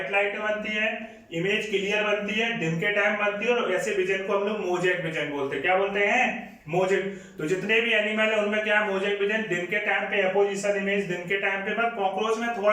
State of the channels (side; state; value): both; identical; correlation 1.00